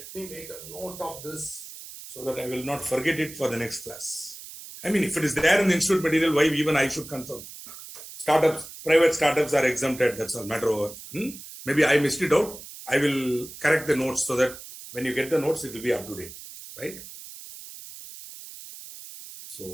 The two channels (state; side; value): noise; right; hiss, 14 dB below the sound